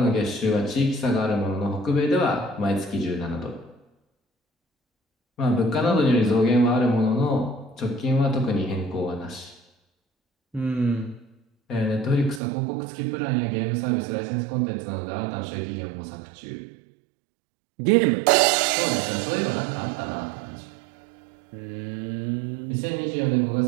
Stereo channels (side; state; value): left; drops out; at 12.4 s